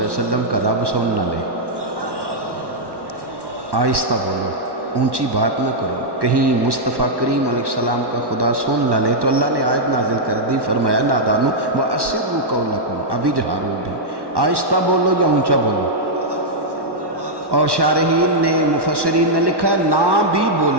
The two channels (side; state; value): left; late; 1.1 ms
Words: وسلم کا رب سن نہ لے، آہستہ بولو، اونچی بات نہ کرو، کہیں مصطفیٰ کریم علیہ السلام کا خدا سن نہ لے۔ تو اللہ نے آیت نازل کر دی، فرمایا نادانو وَأَسِرُّوا قَوْلَكُمْ، ابھی جہارو بھی، آہستہ بولو یا اونچا بولو۔ اور شارحین نے مفسرین نے لکھا نہ بھی